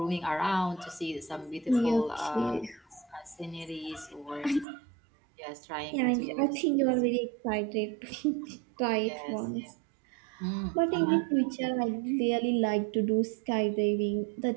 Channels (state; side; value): drops out; left; at 4.7 s